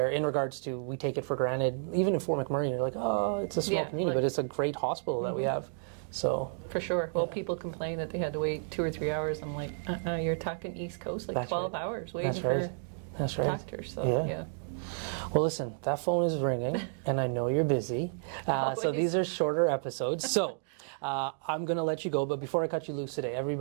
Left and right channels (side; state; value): left; silent; digital silence